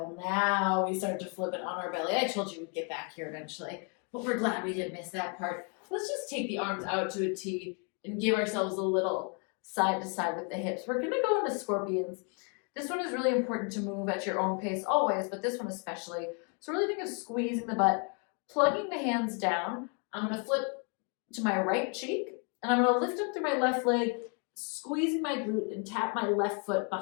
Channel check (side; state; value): right; quieter; 38.1 dB